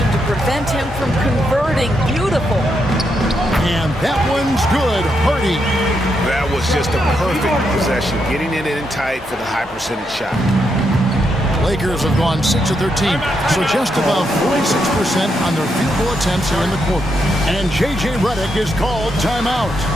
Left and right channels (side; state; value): both; normal; correlation 0.81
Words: to prevent him from converting. Beautiful. And that one's good. Hardy. That was just a perfect possession, getting it in tight for the high percentage shot. Lakers have gone 6 of 13, so just about 46% on their field goal attempts here in the quarter. And J.J. Redick is called timeout.